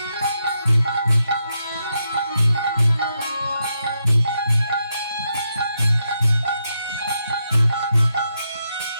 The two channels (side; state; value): both; inverted; correlation -0.82